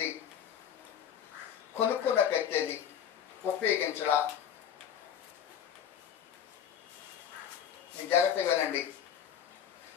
కొనుక్కున్న కత్తి అది ఉపయోగించడా? జాగ్రత్తగా వినండి.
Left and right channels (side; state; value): right; quieter; 8.8 dB